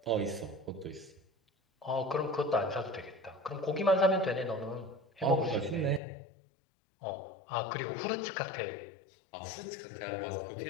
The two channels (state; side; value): drops out; right; at 6.0 s